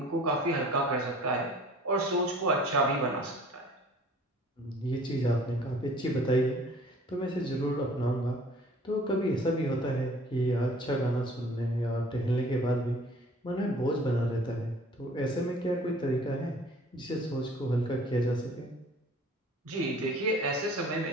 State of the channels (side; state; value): both; normal; correlation 0.50